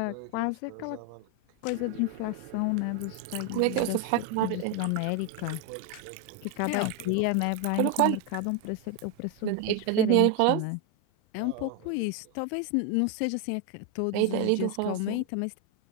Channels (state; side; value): different; both; correlation 0.01